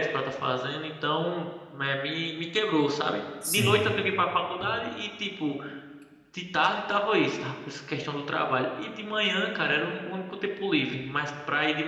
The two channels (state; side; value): identical; both; correlation 1.00